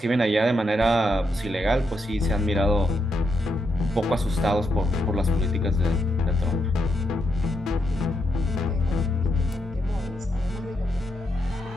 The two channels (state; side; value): normal; both; correlation 0.81